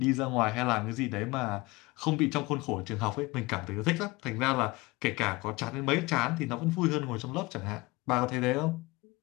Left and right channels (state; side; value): quieter; right; 22.7 dB